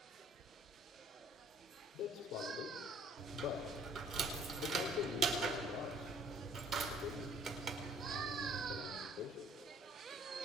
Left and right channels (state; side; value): normal; both; correlation 0.58